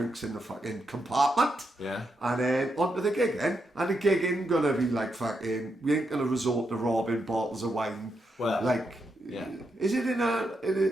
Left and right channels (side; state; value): both; normal; correlation 0.83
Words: in the fucking compartment. Yeah. And then on to the gig then. And the gig ain't gonna be like fucking, we ain't gonna resort to robbing bottles of wine. Well, like, yeah. Is it in